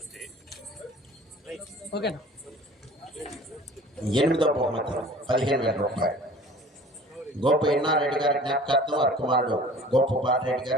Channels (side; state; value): both; normal; correlation 0.45